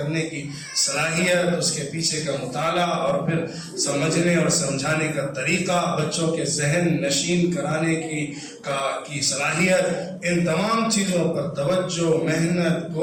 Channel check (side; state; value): both; identical; correlation 1.00